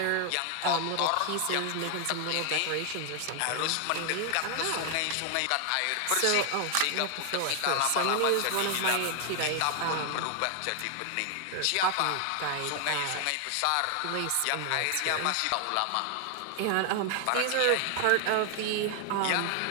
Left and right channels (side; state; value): both; different; correlation 0.00